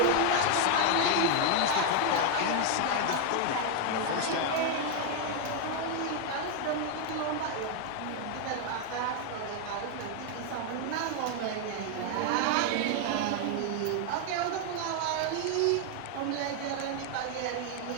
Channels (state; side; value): different; both; correlation 0.00